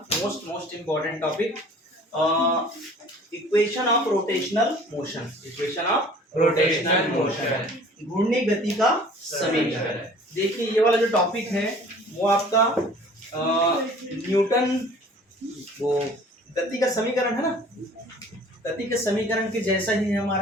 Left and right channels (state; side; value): normal; both; correlation 0.50